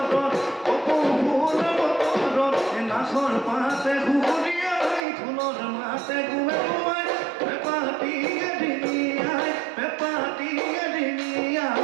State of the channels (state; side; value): drops out; left; at 5.0 s